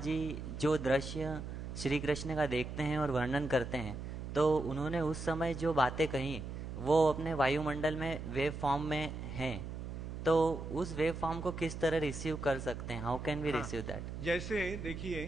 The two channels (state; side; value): noise; right; hum, 7 dB below the sound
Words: जो दृश्य श्री कृष्ण का देखते हैं और वर्णन करते हैं, तो उन्होंने उस समय जो बातें कही वो अपने वायुमंडल में वेव फॉर्म में हैं, तो उस वेव फॉर्म को किस तरह रिसीव कर सकते हैं? How can we receive that? जैसे